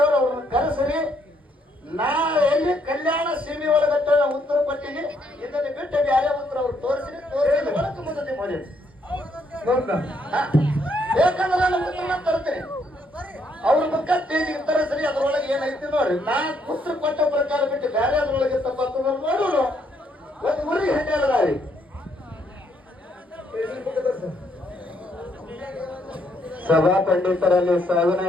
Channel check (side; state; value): both; normal; correlation 0.72